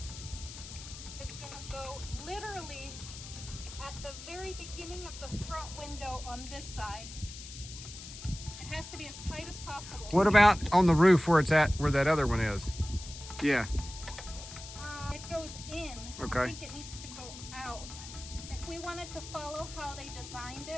On this side, it has to be as tight as possible. What about on the roof where it's at, where that other one is? Yeah. It goes in. Okay. I think it needs to go out. If we wanted to follow how they designed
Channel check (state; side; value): noise; left; hiss, 12 dB below the sound